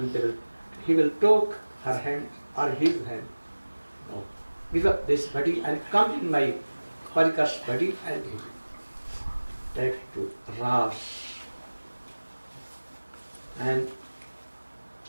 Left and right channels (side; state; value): both; inverted; correlation -1.00